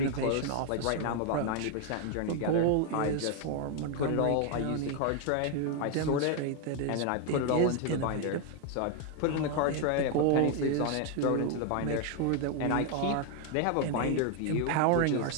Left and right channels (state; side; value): different; both; correlation 0.01